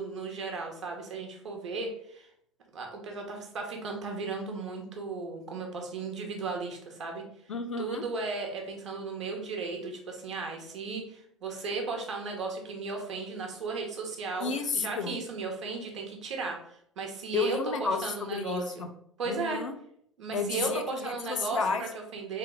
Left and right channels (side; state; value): both; normal; correlation 0.34